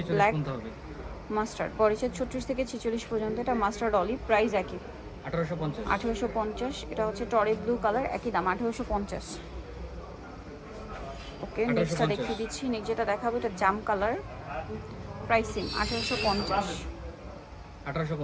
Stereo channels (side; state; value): both; identical; correlation 1.00